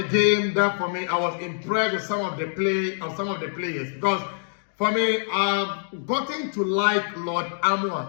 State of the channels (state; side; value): silent; right; digital silence